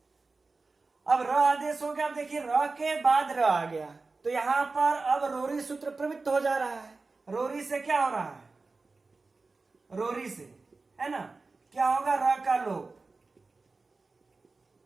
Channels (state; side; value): quieter; left; 3.8 dB